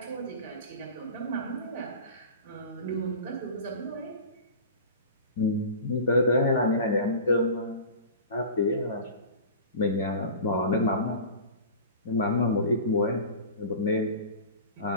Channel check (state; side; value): inverted; both; correlation -0.35